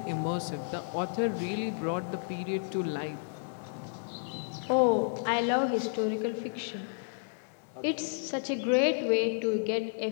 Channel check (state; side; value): silent; right; 57 dB below the other